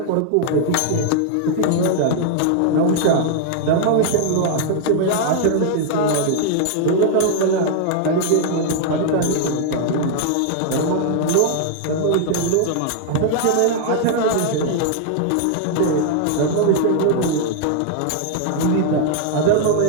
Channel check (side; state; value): both; different; correlation -0.01